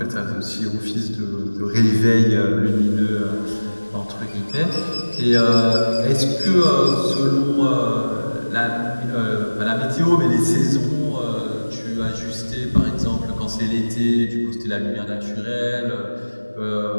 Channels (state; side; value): inverted; both; correlation -1.00